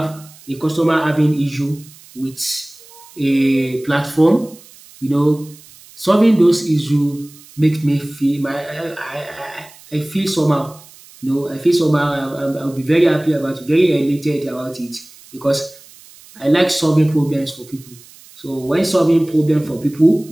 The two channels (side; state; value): right; noise; hiss, 23 dB below the sound